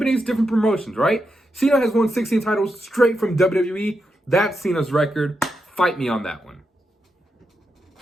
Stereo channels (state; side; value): normal; both; correlation 0.85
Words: different promotions, right? Cena has won 16 titles straight from WWE. That's Cena's record. Fight me on that one.